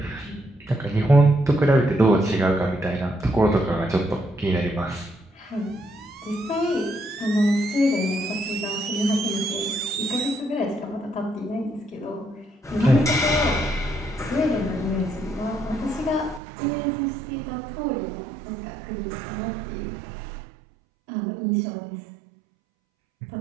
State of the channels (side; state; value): left; drops out; at 16.4 s